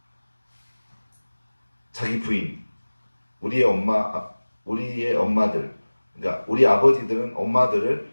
자기 부인, 우리의 엄마들, 그러니까 우리 아버지들은 엄마들을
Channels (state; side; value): inverted; both; correlation -1.00